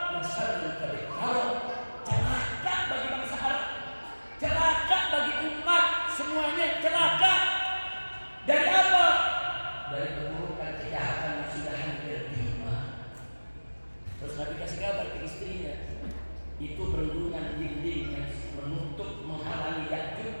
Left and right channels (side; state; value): both; inverted; correlation -1.00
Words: min syarril kadhib. Celaka bagi bangsa Arab, celaka bagi umat semuanya, celaka. Dari apa? Dari keburukan kejahatan yang sudah hampir tiba. Terus Nabi kasih kabar ke istrinya, itu bendungan dinding yang menutup menghalangi